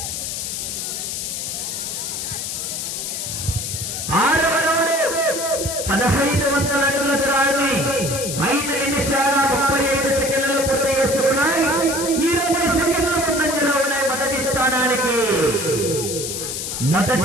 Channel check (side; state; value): left; noise; hiss, 4 dB below the sound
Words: 1500 అడుగుల దూరాన్ని 5 నిమిషాల 35 సెకండ్లలో పూర్తి చేసుకున్నాయి. 20 సెకండ్ల ముందంజలో ఉన్నాయి మొదటి స్థానానికి